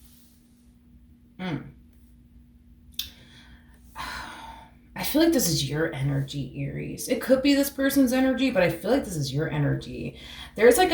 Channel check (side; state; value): both; identical; correlation 1.00